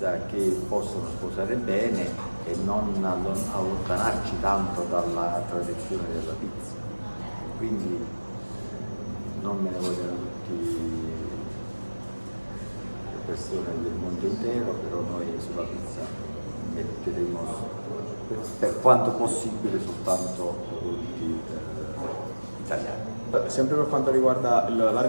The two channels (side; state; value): both; inverted; correlation -1.00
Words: che possono sposare bene e non allontanarci tanto dalla tradizione della pizza. Quindi non me ne vogliono tutti le persone del mondo intero, però noi sulla pizza metteremo per quanto possibile soltanto prodotti italiani. Sempre per quanto riguarda